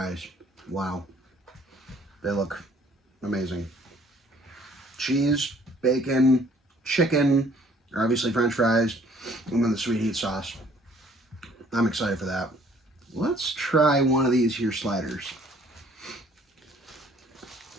Wow. They look amazing. Cheese, bacon, chicken, obviously French fries, and then the sweet heat sauce. I'm excited for that. Let's try one of these here sliders.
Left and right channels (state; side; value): normal; both; correlation 0.59